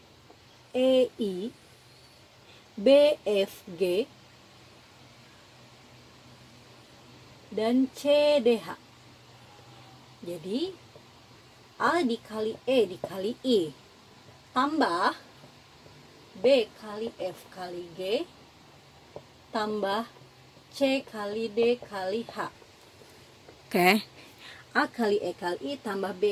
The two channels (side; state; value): both; identical; correlation 1.00